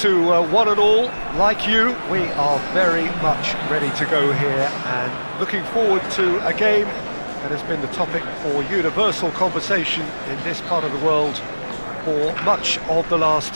to one and all. Like you, we are very much ready to go here and looking forward to a game that has been the topic for universal conversation in this part of the world for much of the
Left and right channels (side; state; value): both; inverted; correlation -1.00